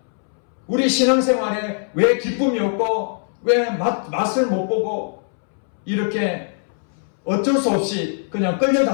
우리 신앙생활에 왜 기쁨이 없고 왜 맛을 못 보고 이렇게 어쩔 수 없이 그냥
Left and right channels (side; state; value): right; silent; 65 dB below the other